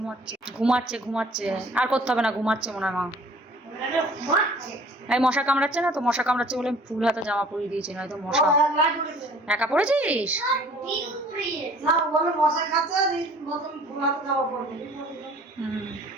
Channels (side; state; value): both; normal; correlation 0.51